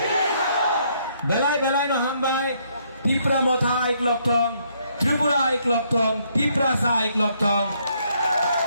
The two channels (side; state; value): both; inverted; correlation -0.70